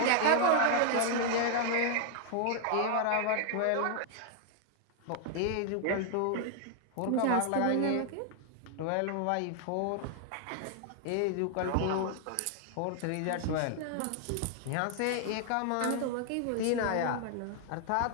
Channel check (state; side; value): different; both; correlation 0.00